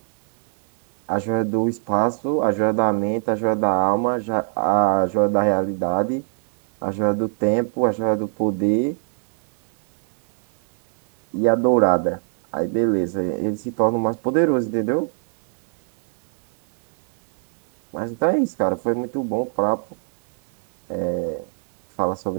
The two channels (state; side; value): silent; left; 63 dB below the other